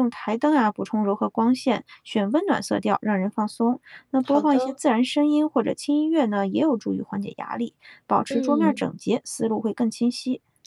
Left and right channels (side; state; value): both; identical; correlation 1.00